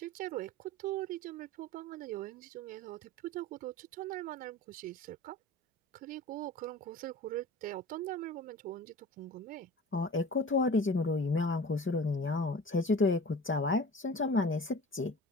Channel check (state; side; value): normal; both; correlation 0.39